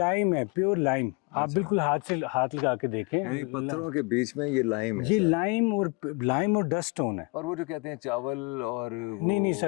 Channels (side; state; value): right; quieter; 30.6 dB